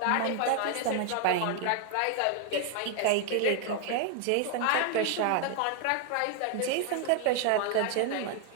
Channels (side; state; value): both; different; correlation 0.00